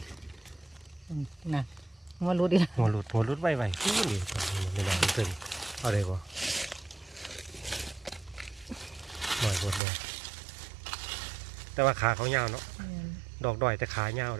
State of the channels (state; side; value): drops out; left; at 9.8 s